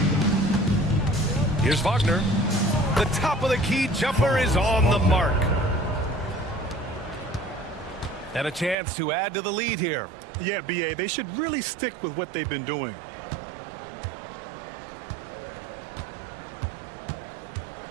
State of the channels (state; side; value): drops out; left; at 8.8 s